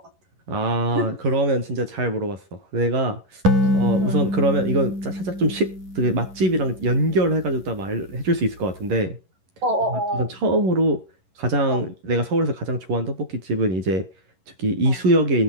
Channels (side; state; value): left; late; 11 ms